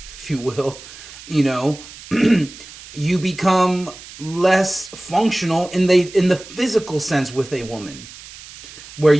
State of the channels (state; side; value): noise; right; hiss, 17 dB below the sound